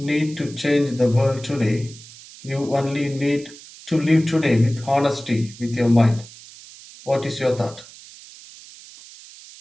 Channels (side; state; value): right; noise; hiss, 19 dB below the sound